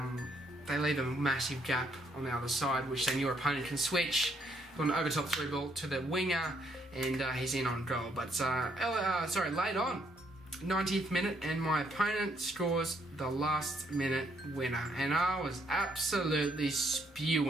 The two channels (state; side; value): normal; both; correlation 0.72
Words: leave a massive gap on the other side, which then your opponent can switch on an over top through ball to the winger, and he's in on goal. But late on, 90th minute, and my opponent scores the last minute winner, and I was absolutely